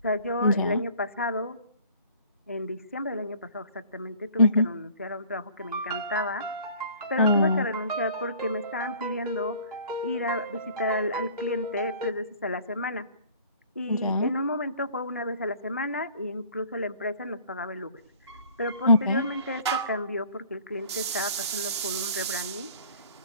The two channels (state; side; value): inverted; both; correlation -0.51